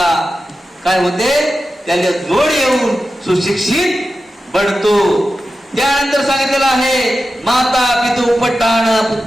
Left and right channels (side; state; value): both; normal; correlation 0.92